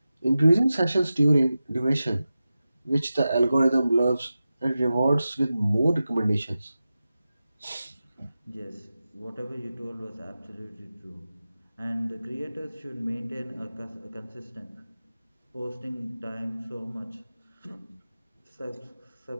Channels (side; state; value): both; inverted; correlation -0.93